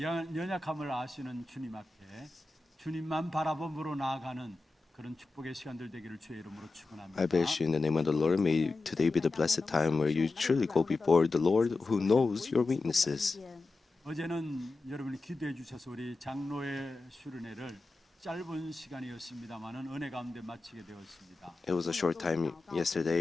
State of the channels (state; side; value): quieter; right; 3.4 dB